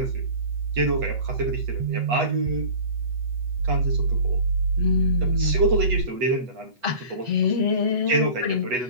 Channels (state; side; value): late; left; 8.2 ms